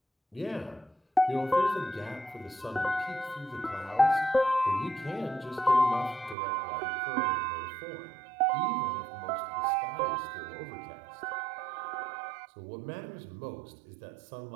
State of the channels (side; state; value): left; drops out; at 6.4 s